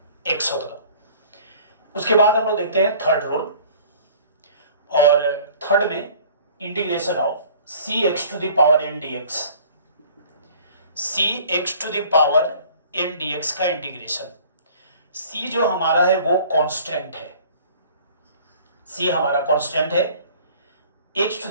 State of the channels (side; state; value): both; inverted; correlation -0.50